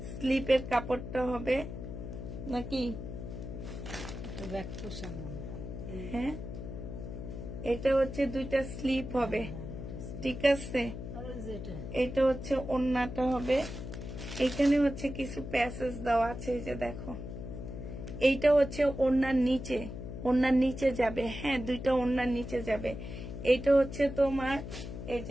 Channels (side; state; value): left; noise; hum, 8 dB below the sound